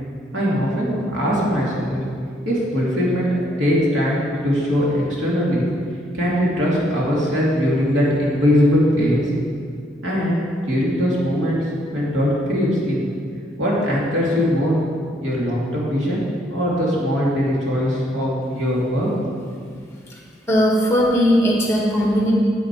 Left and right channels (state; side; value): normal; both; correlation 0.70